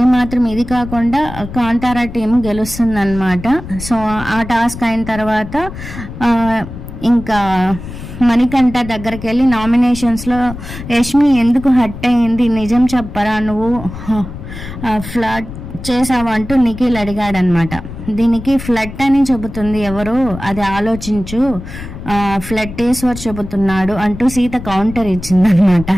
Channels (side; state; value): left; noise; rumble, 11 dB below the sound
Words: ఇది కాకుండా కాంతారా టీం గెలుస్తుందన్నమాట. సో ఆ టాస్క్ అయిన తర్వాత ఇంకా మణికంఠ దగ్గరికి వెళ్ళి నామినేషన్స్లో యష్మి ఎందుకు హట్ అయింది, నిజం చెప్పరా, నువ్వు ఫ్లడ్ చేసావు అంటూ నిఖిల్ అడిగాడనమాట. దీనికి ఫ్లడ్ అని చెబుతుంది ఎవరు, అది ఆలోచించు, ఫ్లట్టేశ్వర్ చెబుతున్నాడు అంటూ సీత కౌంటర్ ఇచ్చిందనమాట.